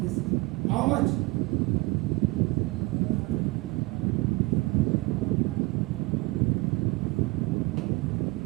this how much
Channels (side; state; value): left; quieter; 23.0 dB